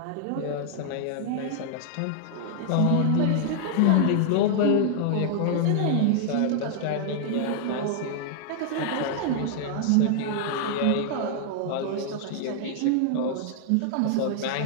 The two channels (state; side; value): different; both; correlation -0.01